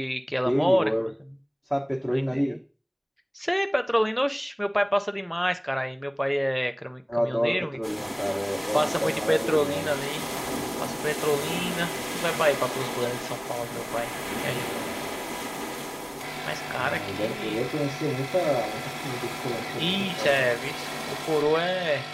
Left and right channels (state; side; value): identical; both; correlation 1.00